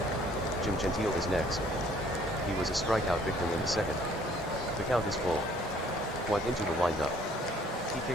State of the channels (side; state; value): both; normal; correlation 0.59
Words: Jim Gentile is next. He was a strikeout victim in the second. The count is full. White into the windup. He